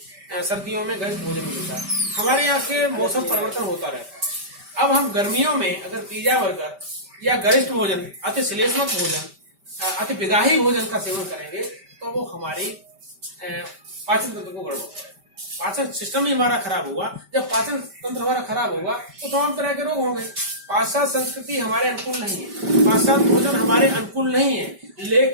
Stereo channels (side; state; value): left; late; 5.1 ms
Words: सर्दियों में गरिष्ठ भोजन मिलता है। हमारे यहाँ के मौसम परिवर्तन होता रहता है। अब हम गर्मियों में अगर पिज्जा बर्गर या गरिष्ठ भोजन, अति श्लेष्मक भोजन, अति विगाही भोजन का सेवन करेंगे तो वो हमारी पाचन तंत्र को गड़बड़ करेगा। पाचन सिस्टम ही हमारा खराब हुआ। जब पाचन तंत्र हमारा खराब होगा तो तमाम तरह के रोग होंगे। पाश्चात्य संस्कृति हमारे अनुकूल नहीं है, पाश्चात्य भोजन हमारे अनुकूल नहीं है,